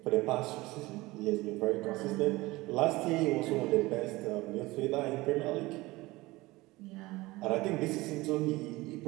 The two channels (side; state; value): left; quieter; 20.5 dB